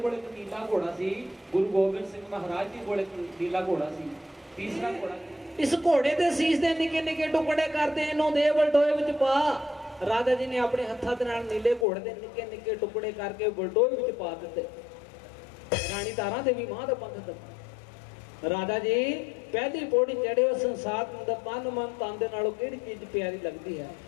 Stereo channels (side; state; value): right; drops out; at 11.9 s